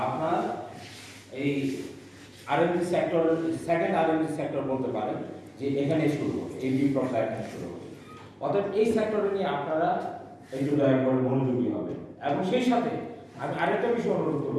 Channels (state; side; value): identical; both; correlation 1.00